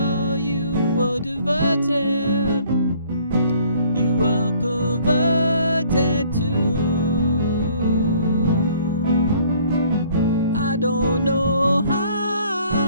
you were diverted, you were perverted too. I don't know how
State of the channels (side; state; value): both; inverted; correlation -0.59